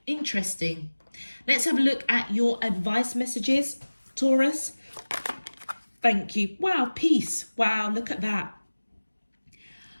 Interesting. Let's have a look at your advice messages, Taurus. Thank you. Wow, peace. Wow, look at that.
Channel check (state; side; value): inverted; both; correlation -1.00